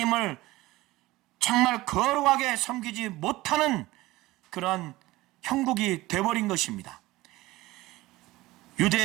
정말 거룩하게 섬기지 못하는 그런 형국이 되어버린 것입니다.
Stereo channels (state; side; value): quieter; left; 18.8 dB